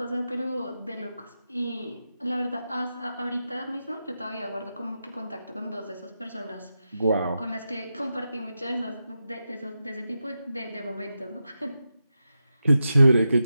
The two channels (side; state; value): both; inverted; correlation -0.89